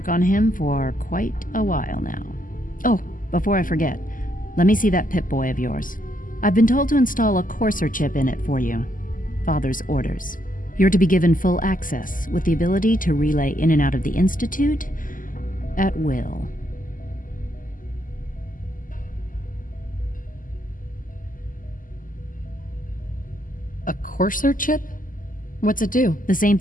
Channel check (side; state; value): right; late; 0.39 ms